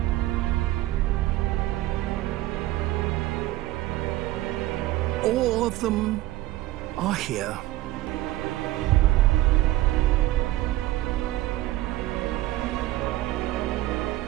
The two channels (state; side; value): quieter; left; 16.4 dB